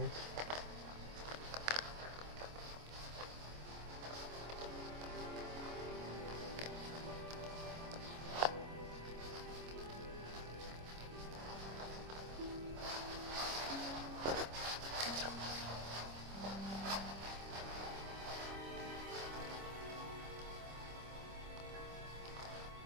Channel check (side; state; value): left; late; 25 ms